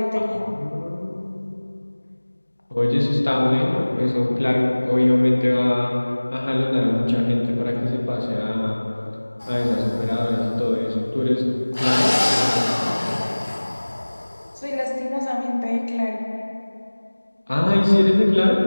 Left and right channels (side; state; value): both; inverted; correlation -1.00